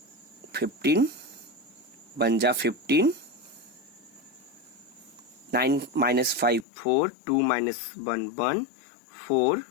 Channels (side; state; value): right; drops out; at 6.7 s